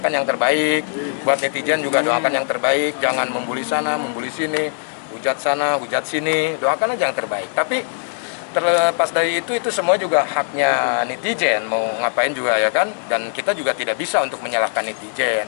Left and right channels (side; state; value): right; silent; digital silence